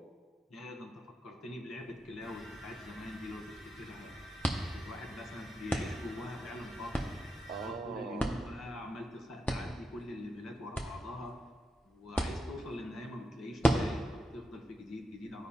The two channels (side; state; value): both; normal; correlation 0.86